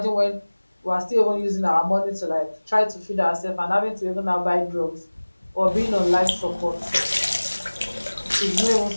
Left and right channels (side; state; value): both; inverted; correlation -1.00